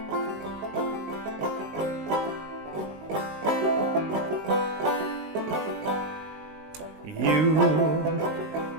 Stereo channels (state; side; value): late; left; 19 ms